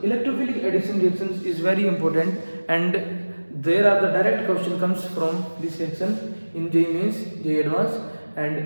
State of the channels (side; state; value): both; inverted; correlation -1.00